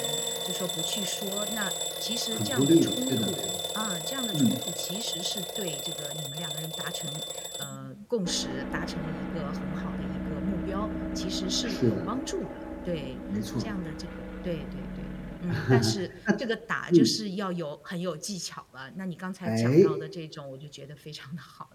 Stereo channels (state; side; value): identical; both; correlation 1.00